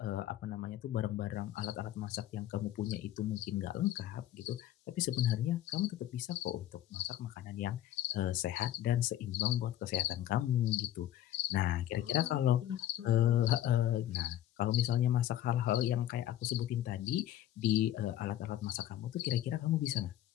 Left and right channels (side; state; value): right; quieter; 12.5 dB